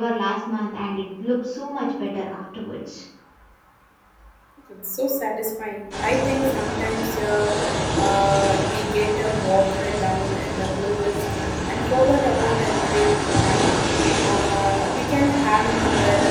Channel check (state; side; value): identical; both; correlation 1.00